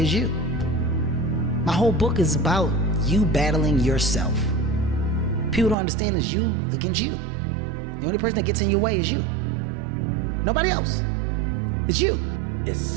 you. My whole book is about you battling yourself. People don't understand it's you against you. The only person that gets in your way is you. Nobody else. It's you. It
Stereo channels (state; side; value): drops out; left; at 5.8 s